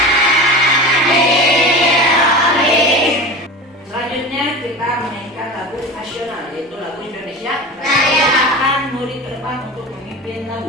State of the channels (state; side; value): normal; both; correlation 0.31